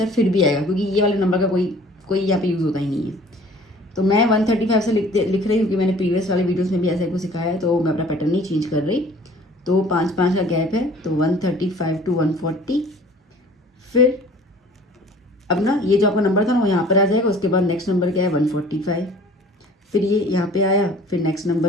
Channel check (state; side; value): normal; both; correlation 0.50